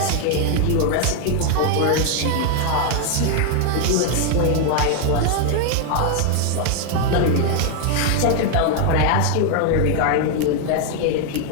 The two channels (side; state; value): both; different; correlation 0.00